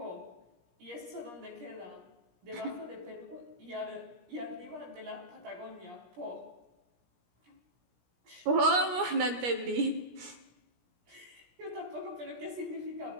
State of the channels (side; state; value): left; late; 17 ms